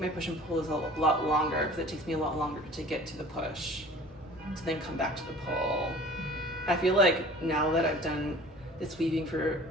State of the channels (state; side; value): normal; both; correlation 0.45